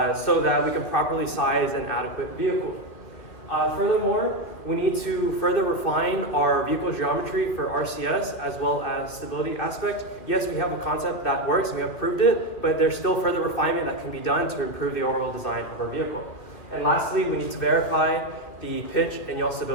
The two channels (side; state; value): right; late; 2.7 ms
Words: so that we can properly size an adequate vehicle. Furthermore, we need to further refine our vehicle geometry for RCS as well as stability aspect. Yes, we have a concept that works, and we have proved it, but there's still further refinement that can be done to improve the overall design of our vehicle. And lastly, we need to verify the pitch and yaw